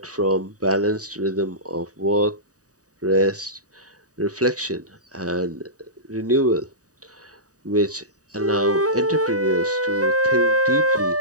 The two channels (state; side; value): late; left; 0.66 ms